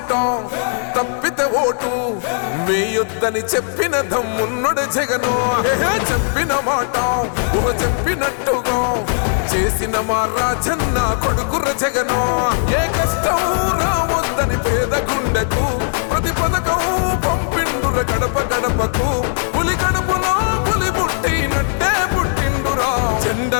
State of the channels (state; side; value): silent; right; digital silence